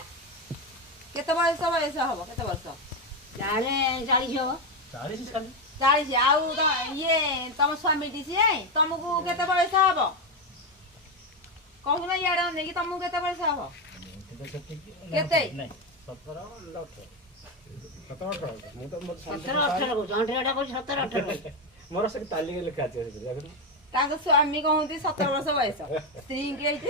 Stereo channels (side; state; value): both; normal; correlation 0.10